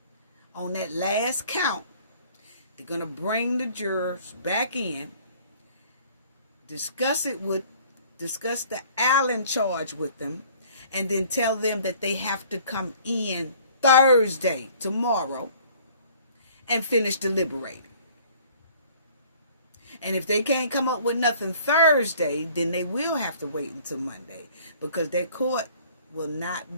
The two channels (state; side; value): inverted; both; correlation -0.54